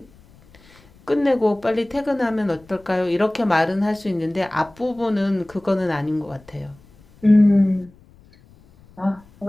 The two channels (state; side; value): noise; left; rumble, 27 dB below the sound